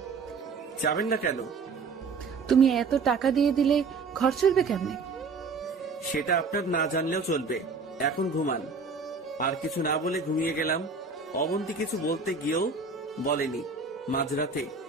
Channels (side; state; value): left; quieter; 4.5 dB